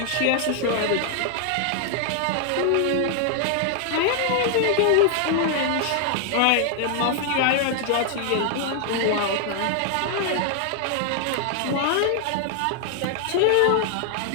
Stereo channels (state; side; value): different; both; correlation 0.00